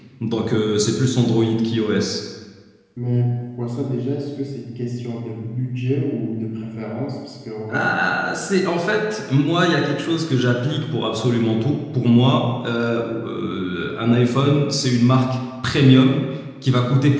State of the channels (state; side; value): identical; both; correlation 1.00